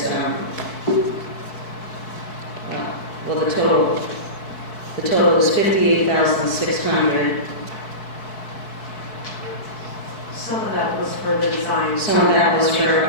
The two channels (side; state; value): right; late; 4.6 ms